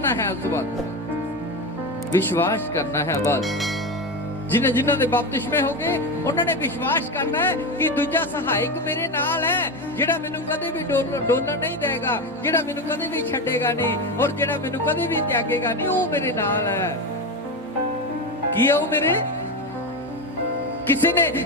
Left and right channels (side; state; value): both; normal; correlation 0.17